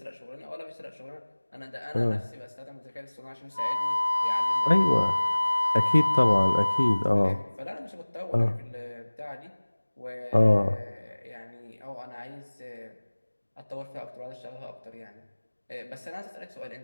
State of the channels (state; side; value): inverted; both; correlation -1.00